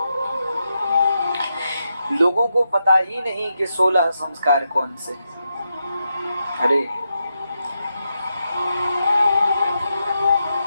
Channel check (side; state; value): both; inverted; correlation -0.85